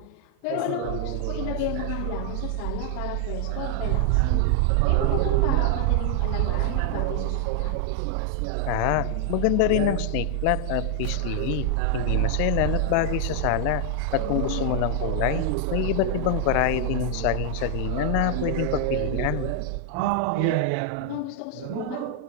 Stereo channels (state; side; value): different; both; correlation 0.00